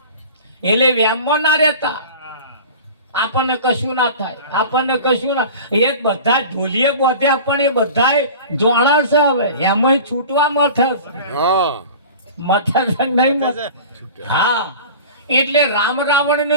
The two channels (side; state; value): both; inverted; correlation -0.38